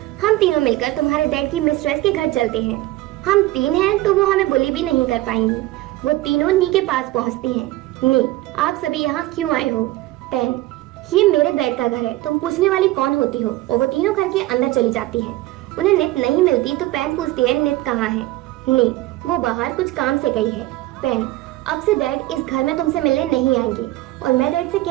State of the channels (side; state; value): left; quieter; 17.4 dB